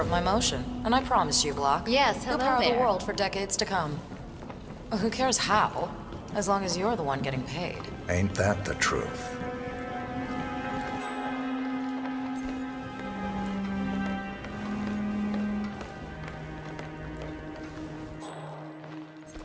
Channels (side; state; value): both; identical; correlation 1.00